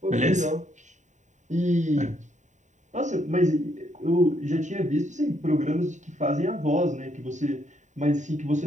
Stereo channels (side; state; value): left; late; 0.35 ms